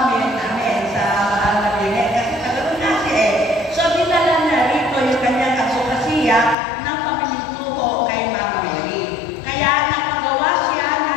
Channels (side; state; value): right; drops out; at 6.6 s